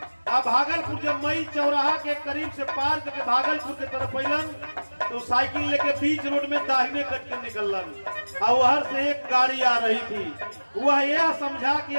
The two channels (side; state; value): both; inverted; correlation -1.00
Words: अब भागलपुर जब मई चौराहा के करीब से पार करके भागलपुर के तरफ अलन तो साइकिल लेके बीच रोड में दाहिने कट के निकलन और वहां से एक गाड़ी आ रही थी। वह यह समझा कि